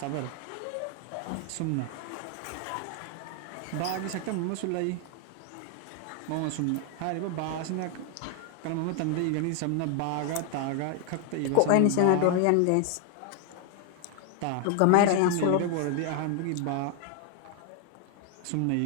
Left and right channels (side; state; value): both; different; correlation 0.00